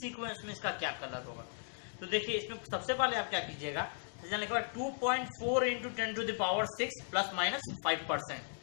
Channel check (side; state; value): right; silent; digital silence